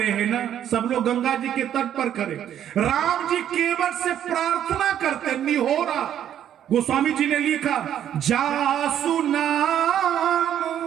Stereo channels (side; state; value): left; quieter; 10.3 dB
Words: हैं ना, सब लोग गंगा जी के तट पर खड़े। राम जी केवट से प्रार्थना करते निहोरा। गोस्वामी जी ने लिखा जासु नाम